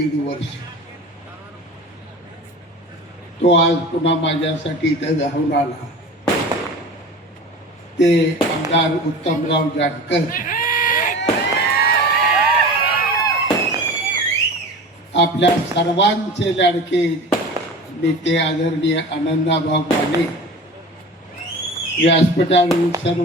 वर्ष. तो आज पुन्हा माझ्यासाठी इथं धावून आला. ते आमदार उत्तमराव जानकर, आपल्या सर्वांचे लाडके नेते आदरणीय आनंदाभाऊ माने, व्यासपीठावरील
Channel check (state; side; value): normal; both; correlation 0.35